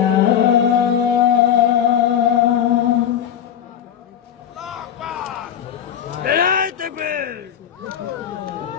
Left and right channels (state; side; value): quieter; right; 9.3 dB